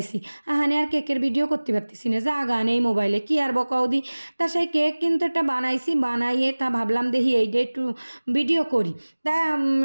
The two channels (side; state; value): both; inverted; correlation -1.00